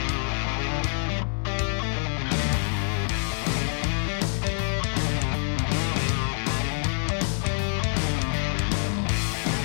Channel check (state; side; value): silent; right; 61 dB below the other